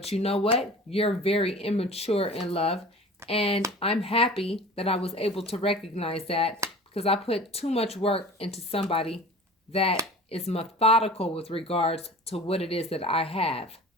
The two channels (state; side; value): normal; both; correlation 0.40